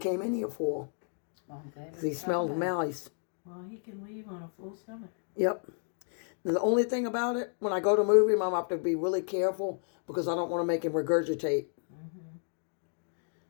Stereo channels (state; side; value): silent; right; 55 dB below the other